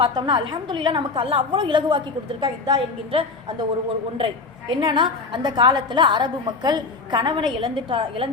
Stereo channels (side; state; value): right; quieter; 4.2 dB